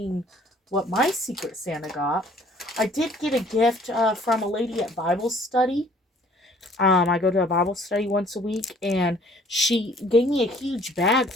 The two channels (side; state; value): both; normal; correlation 0.57